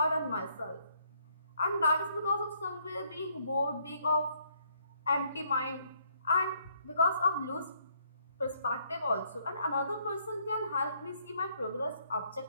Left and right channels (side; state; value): both; inverted; correlation -0.68